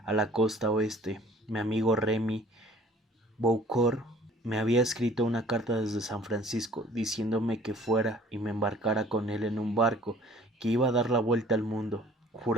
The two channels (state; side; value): normal; both; correlation 0.52